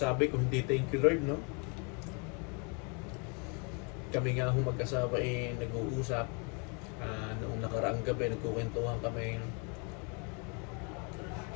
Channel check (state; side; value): quieter; right; 34.8 dB